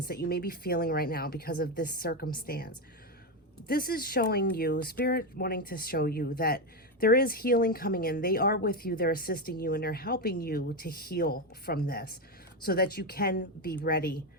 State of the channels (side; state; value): both; normal; correlation 0.10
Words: that you may be feeling right now because of this circumstance. This is showing you, Spirit wanting to show you that there is healing coming in. They are with you, they're assisting you, and they're helping you to heal from this so that you can be ready